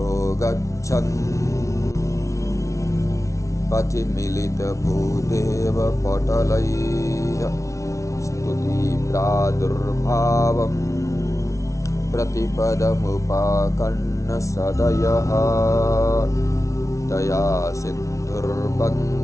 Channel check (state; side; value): late; right; 0.15 ms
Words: गच्छन् पथि मिलितभूदेवपटलैः स्तुतिप्रादुर्भावं प्रतिपदमुपाकर्ण्यसदयः दया